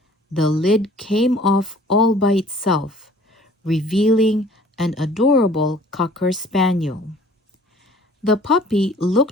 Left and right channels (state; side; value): normal; both; correlation 0.52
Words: the lid came off all by itself, revealing an adorable Cocker Spaniel. The puppy